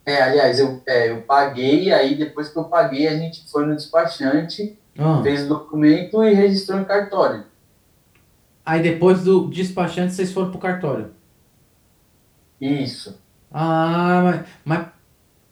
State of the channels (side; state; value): both; identical; correlation 1.00